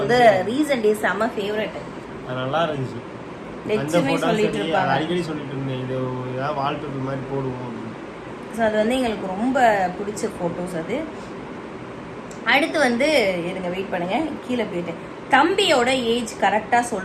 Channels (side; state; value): both; identical; correlation 1.00